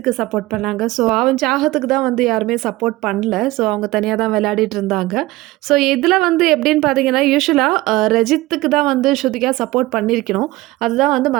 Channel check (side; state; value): left; quieter; 19.0 dB